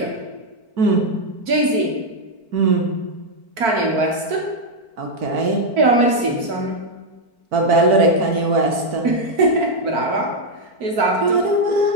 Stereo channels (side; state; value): left; late; 4.5 ms